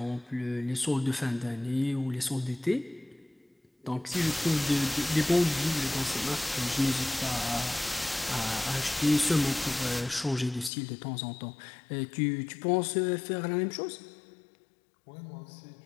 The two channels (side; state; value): right; drops out; at 10.7 s